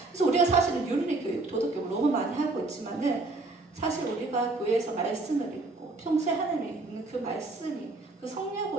그래서 우리가 사실은 윤리교육, 도덕교육 너무 많이 하고 있지만은 사실 우리가 교회에서 말씀을 읽고 평소에 하나님이 읽는 그 말씀이 그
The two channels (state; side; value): quieter; left; 3.2 dB